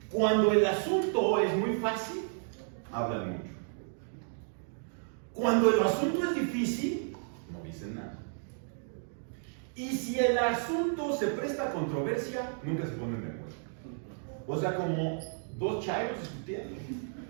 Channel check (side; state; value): left; silent; 56 dB below the other